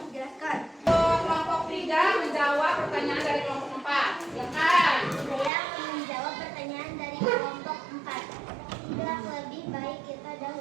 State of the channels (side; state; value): left; drops out; at 5.5 s